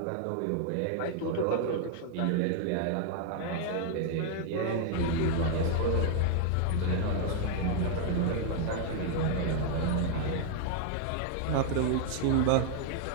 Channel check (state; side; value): different; both; correlation 0.00